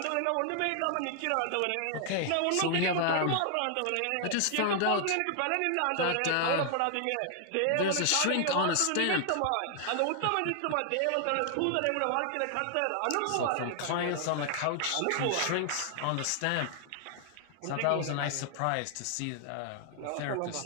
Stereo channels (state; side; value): different; both; correlation 0.00